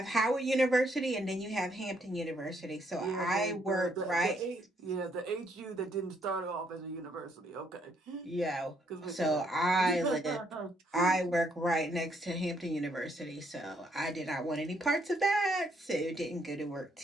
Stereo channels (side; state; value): both; normal; correlation 0.72